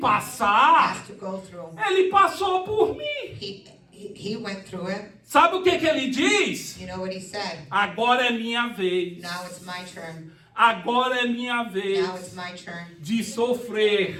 has to go through. Ele passou por mim. He went through it. Sabe o que ele diz? You know what he said? Agora é minha vez. Now it's my turn. Agora é minha vez Now it's my turn de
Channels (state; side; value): identical; both; correlation 1.00